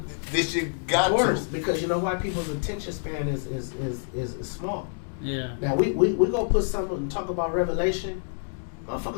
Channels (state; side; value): silent; right; digital silence